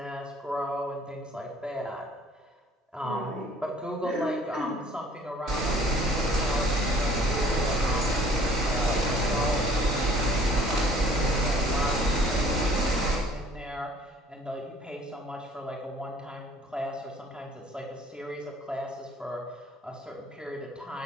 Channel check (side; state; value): both; normal; correlation 0.54